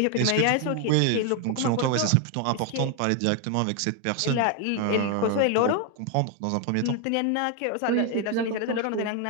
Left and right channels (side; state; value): both; different; correlation 0.01